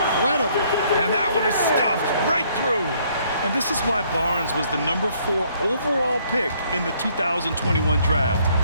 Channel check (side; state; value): both; inverted; correlation -0.65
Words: And that one is stuffed right through. And this is why Barnes was the number 4 overall pick in the 2021